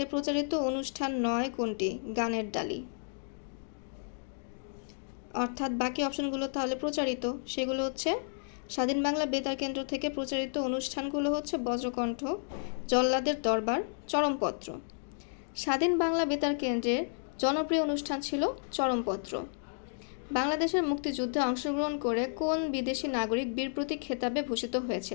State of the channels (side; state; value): right; silent; digital silence